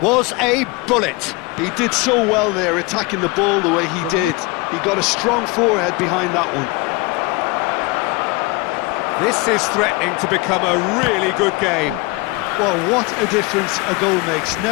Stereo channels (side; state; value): right; quieter; 22.5 dB